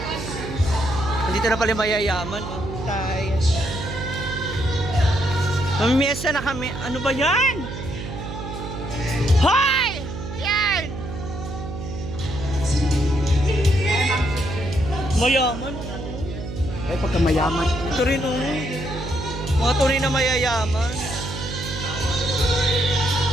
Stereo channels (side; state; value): right; noise; hum, 8 dB below the sound